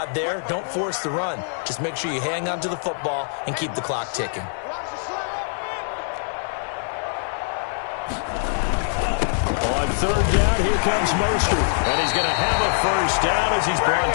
there, don't force the run. Just make sure you hang on to the football and keep the clock ticking. third down, here comes Mostert. And he's going to have a first down as he's brought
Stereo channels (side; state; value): right; silent; 61 dB below the other